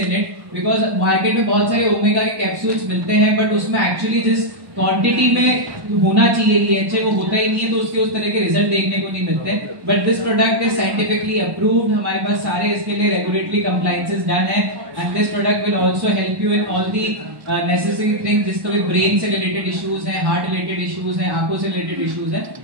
it. Because market में बहुत सारे ओमेगा के कैप्सूल्स मिलते हैं बट उसमें एक्चुअली जिस क्वांटिटी में होना चाहिए DHA, वो होता ही नहीं है तो उसके उस तरह के रिजल्ट देखने को नहीं मिलते। But this product is scientifically approved, हमारे पास सारे इसके लिए रेगुलेटरी कंप्लायंसेस डन है and this product will also help you in all the necessary things, जिसको भी ब्रेन से रिलेटेड इश्यूज हैं, हार्ट रिलेटेड इश्यूज हैं, आंखों से रिलेटेड इश्यूज हैं,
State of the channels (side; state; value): left; late; 1.1 ms